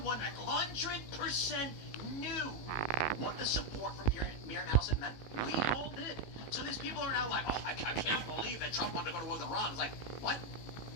100% knew what the support from Miriam Adelson meant. We all did. So these people are now like, oh, I can't believe that Trump wanted to go to war with Iran. It's like, what?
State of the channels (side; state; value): right; late; 18 ms